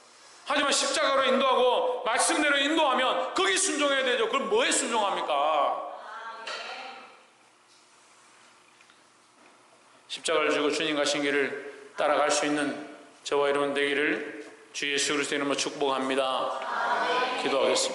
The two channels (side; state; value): both; identical; correlation 1.00